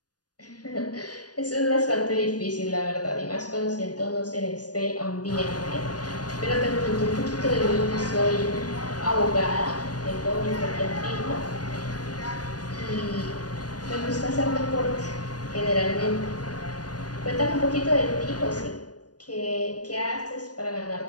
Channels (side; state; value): right; late; 0.69 ms